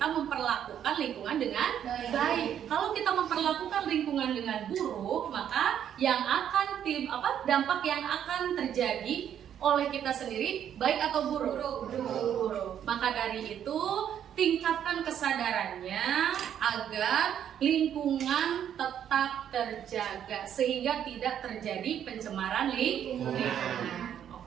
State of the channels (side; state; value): left; quieter; 9.6 dB